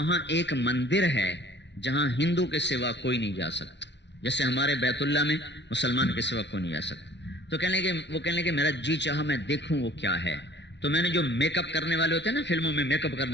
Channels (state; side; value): late; right; 0.51 ms